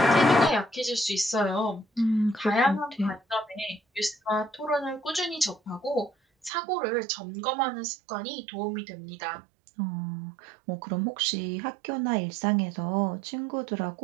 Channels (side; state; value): left; drops out; at 6.5 s